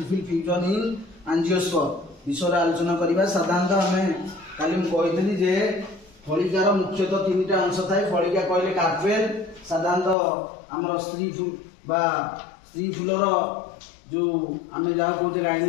fusion in angiosperm विषय आलोचना करबा। साधारणतः आमे काली कही जे फलिकार मुख्यतः तीनटा अंश थाए। फलिका कहले कार्पेल, साधारणतः आमर स्त्री फूल बा स्त्री फूलर जो आमे जहाँ कहते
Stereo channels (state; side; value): drops out; right; at 10.2 s